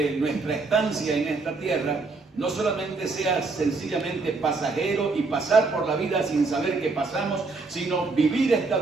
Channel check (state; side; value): quieter; left; 3.9 dB